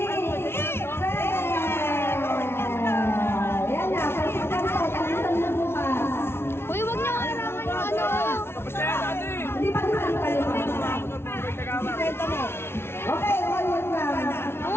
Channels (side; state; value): right; late; 0.12 ms